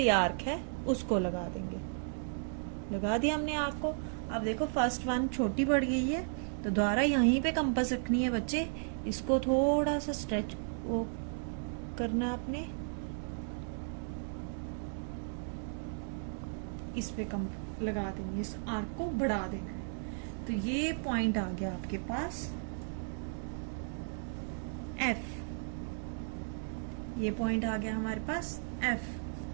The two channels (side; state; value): left; silent; digital silence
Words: आर्क है उसको लगा देंगे। लगा दिया हमने आर्क को। अब देखो फर्स्ट वन छोटी पड़ गई है, तो दोबारा यहीं पे कंपास रखनी है बच्चे। इसको थोड़ा सा स्ट्रेच वो करना आपने, इस पे लगा देंगे, इस आर्क को बढ़ा देना है। तो ये पॉइंट आ गया आपके पास F। ये पॉइंट आ गया हमारे पास F।